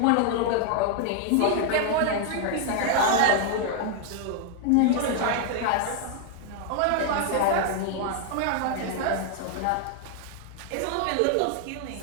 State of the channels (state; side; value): different; both; correlation 0.00